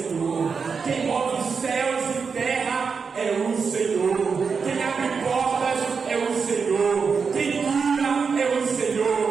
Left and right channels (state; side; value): quieter; left; 5.5 dB